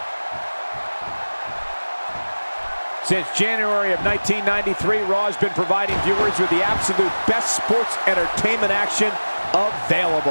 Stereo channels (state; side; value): inverted; both; correlation -1.00